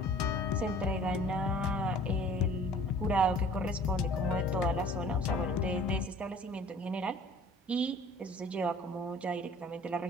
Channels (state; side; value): normal; both; correlation 0.49